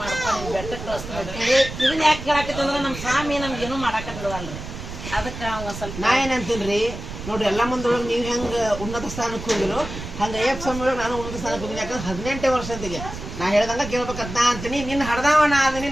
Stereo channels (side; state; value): right; noise; rumble, 10 dB below the sound